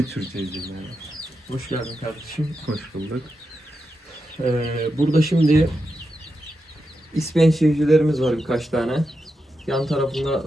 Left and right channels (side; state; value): both; normal; correlation 0.87